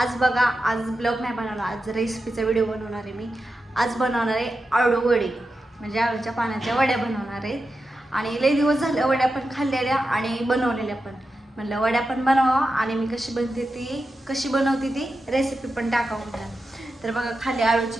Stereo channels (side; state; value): both; normal; correlation 0.90